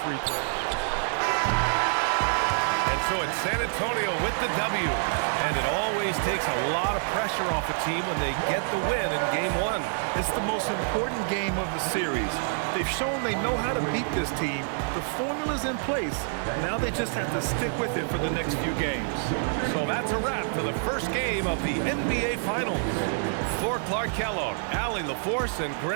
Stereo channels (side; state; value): left; silent; 60 dB below the other